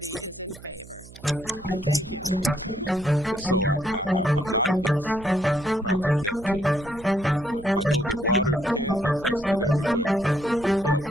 is in favor. Thank you. And so I'm not against Project Neptune. I know that water can be tested everywhere. Hell,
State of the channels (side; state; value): right; noise; hum, 19 dB below the sound